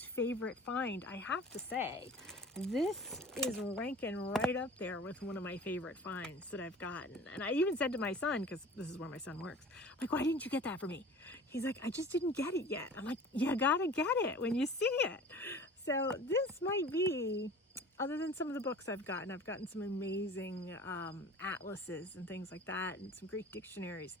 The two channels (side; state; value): both; normal; correlation 0.42